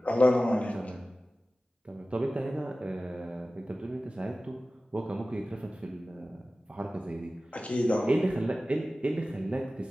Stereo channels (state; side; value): normal; both; correlation 0.96